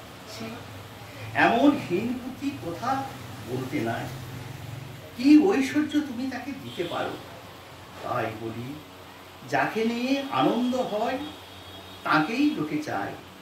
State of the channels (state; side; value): identical; both; correlation 1.00